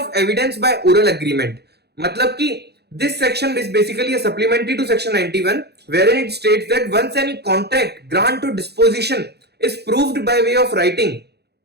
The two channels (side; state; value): left; late; 0.48 ms